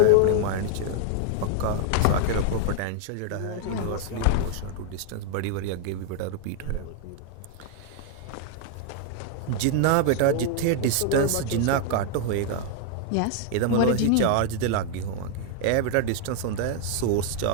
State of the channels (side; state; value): both; different; correlation 0.00